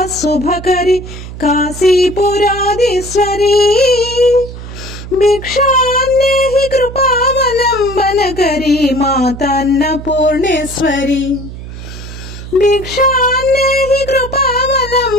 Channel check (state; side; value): noise; right; hum, 12 dB below the sound